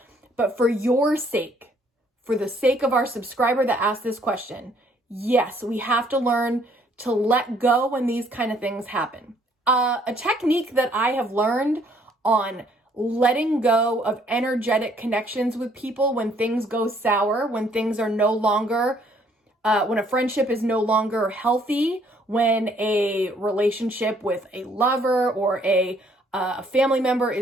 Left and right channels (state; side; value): normal; both; correlation 0.64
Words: But for your sake, for the sake of our subscriber that asked this question, yes, we have to learn to let go when these kind of things happen. A technique that I have learned on letting go of energetic connections with people when things go sour, when things are no longer, when a friendship is no longer healthy, when a relationship with a lover or a family member